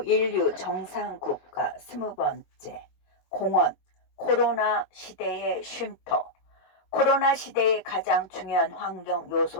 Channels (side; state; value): right; late; 21 ms